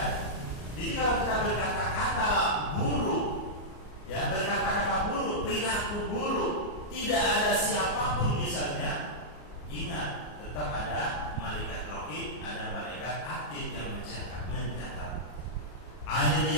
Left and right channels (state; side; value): late; right; 34 ms